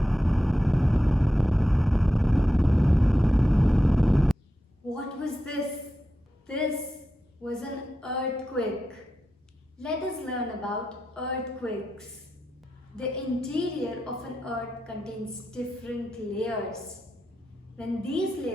What was this? This was an earthquake. Let us learn about earthquakes. The interior of an earth contains different layers. When these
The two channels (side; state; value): both; normal; correlation 0.89